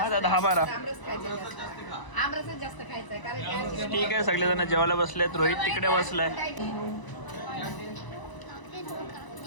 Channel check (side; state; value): right; late; 1.0 ms